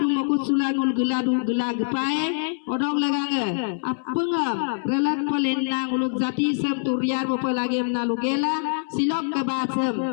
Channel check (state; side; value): silent; right; 62 dB below the other